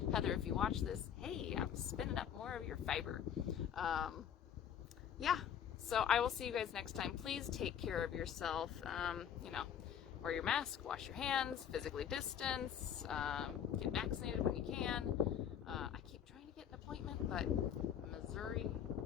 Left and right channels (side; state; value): right; quieter; 9.0 dB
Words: Heather, if you watch this, hey, I'm spinning up more of your fiber. Yeah, So I will see you guys next time. Please take care of yourself. You know, wear your mask, wash your hands, physically distance, get vaccinated when you can. I keep trying to get an appointment, but Missouri,